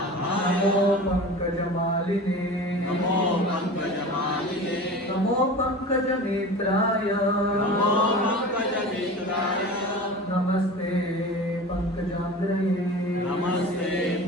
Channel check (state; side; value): normal; both; correlation 0.35